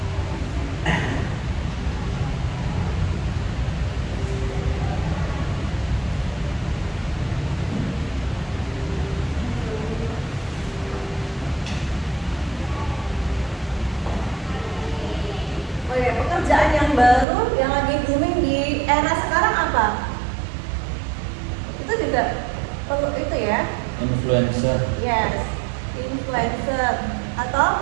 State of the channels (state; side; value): drops out; left; at 17.2 s